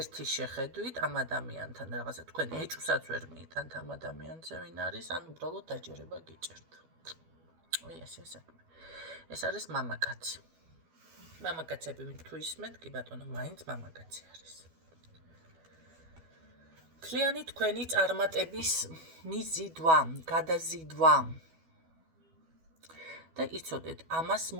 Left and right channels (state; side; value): late; left; 12 ms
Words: შეხედვით ამ ადამიანთან რაღაცა თქვენ ეჭვსაც ვერ მიიტანთ ამ ადამიანზე ვინ არის, ან უბრალოდ დაჯერება გიჭერთ. ესე საქმე. ეს არის მამაკაცი. მამაკაცები თუ ისმენთ, კი ბატონო, მაინც მამაკაცი არის. მთლიანი თქვენი წარმატების მიზიდვა, გადაზიდვა. და იცოდეთ, ამას